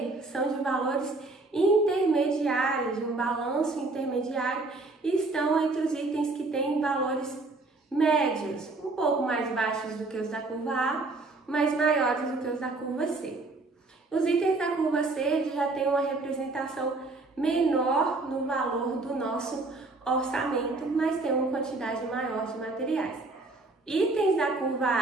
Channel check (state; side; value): quieter; left; 3.3 dB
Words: são de valores intermediários, de um balanço intermediário, e estão entre os itens que têm valores médios, um pouco mais baixos do que os da curva A, mas maiores do que os da curva C. Os itens da curva C já têm uma representação menor no valor do nosso orçamento, mas tem uma quantidade maior de materiais. Itens da curva